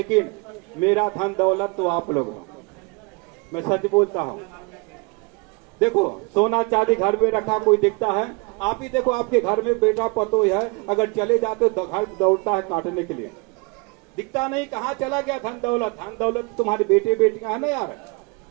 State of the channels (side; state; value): left; quieter; 30.2 dB